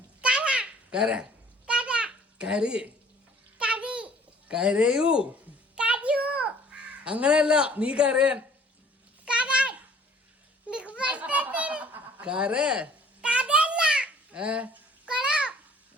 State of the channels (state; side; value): normal; both; correlation 0.54